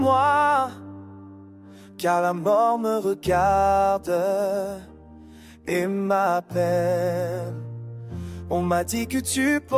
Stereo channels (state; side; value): identical; both; correlation 1.00